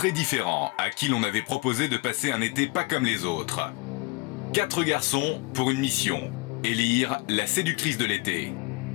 différents à qui l'on avait proposé de passer un été pas comme les autres. 4 garçons pour une mission, élire la séductrice de l'été.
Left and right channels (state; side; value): quieter; right; 26.3 dB